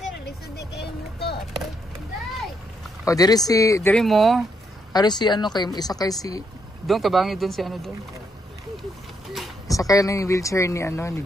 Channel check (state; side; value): normal; both; correlation 0.76